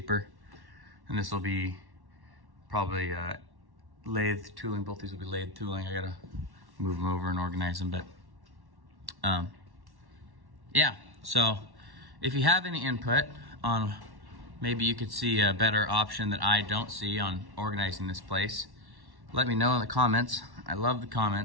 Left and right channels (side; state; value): left; late; 1.1 ms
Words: And this will be probably lathe tooling. Both these will be lathe tooling. I gotta move them over and organize them, but yeah. So if you have any input on, maybe you could see a better option that I don't see on organizing this place, let me know in the comments. I love the